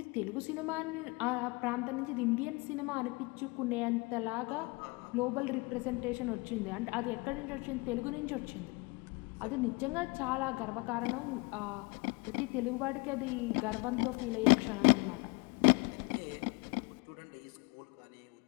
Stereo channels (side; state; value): right; quieter; 27.5 dB